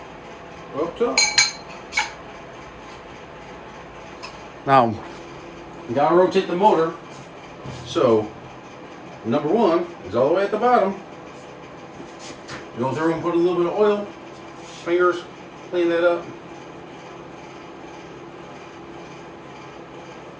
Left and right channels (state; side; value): identical; both; correlation 1.00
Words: up top. Now, you gotta rotate the motor. So, number 1 is all the way at the bottom. Go through and put a little bit of oil, fingers, clean that up.